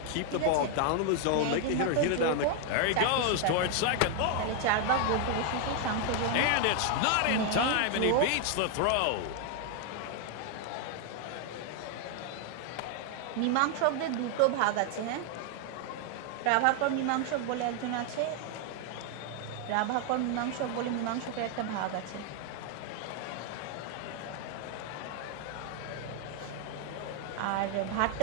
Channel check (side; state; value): both; different; correlation 0.00